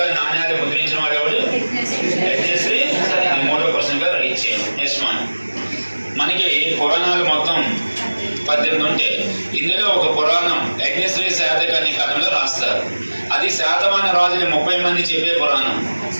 నాణ్యాలు ముద్రించిన వాడు ఎవడు? యజ్ఞశ్రీ. మూడో క్వశ్చన్ గా రైట్ చేయండి. Next one. మనకి పురాణాలు మొత్తం 18 ఉంటాయి. ఇందులో ఒక పురాణం యజ్ఞశ్రీ శాతకర్ణి కథలో రాస్తారు. అది శాతవాహన రాజులు 30 మంది చెప్పే పురాణం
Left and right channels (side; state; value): both; inverted; correlation -1.00